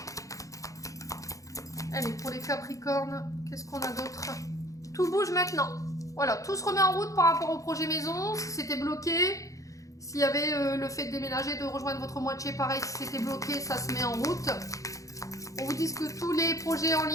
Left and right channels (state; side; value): late; right; 0.16 ms